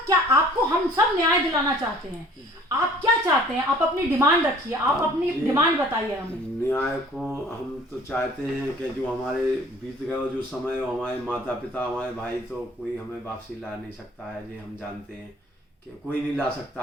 क्या, आपको हम सब न्याय दिलाना चाहते हैं, आप क्या चाहते हैं? आप अपनी डिमांड रखिए, आप अपनी डिमांड बताइए हमें। न्याय को हम तो चाहते हैं कि जो हमारे बीत गए जो समय, हमारे माता पिता, हमारे भाई, तो कोई हमें वापसी ला नहीं सकता है, ये हम जानते हैं। कि कोई नहीं ला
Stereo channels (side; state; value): both; normal; correlation 0.52